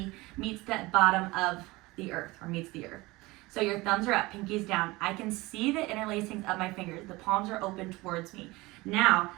meets the bottom of the earth or meets the earth. So your thumbs are up, pinkies down. I can see the interlacings of my fingers. The palms are open towards me. Now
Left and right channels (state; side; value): quieter; left; 21.6 dB